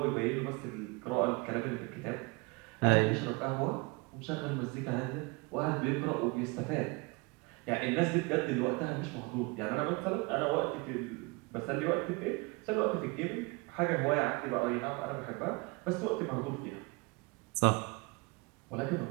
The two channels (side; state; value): left; quieter; 27.7 dB